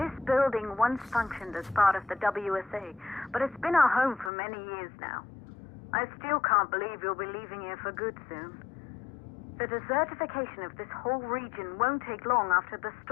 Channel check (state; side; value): drops out; right; at 4.3 s